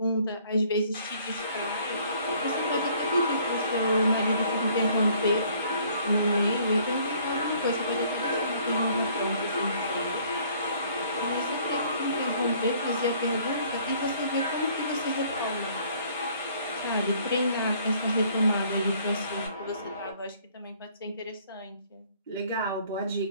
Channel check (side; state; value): both; inverted; correlation -0.60